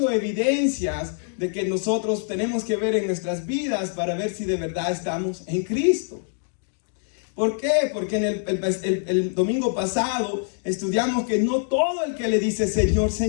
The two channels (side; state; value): right; silent; digital silence